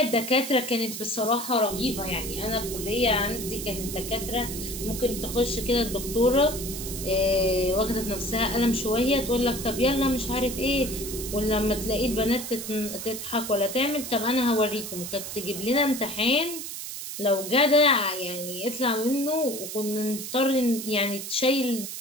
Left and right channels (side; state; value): right; noise; hiss, 8 dB below the sound